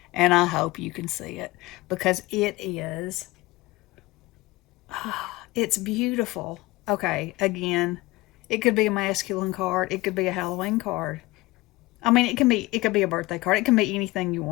and I hope you can see it because it is, it's beautiful. Okay, again, it could be a masculine card. It could be a Halloween card. I mean, it could be a birthday card. It can be anything you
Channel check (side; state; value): right; quieter; 20.7 dB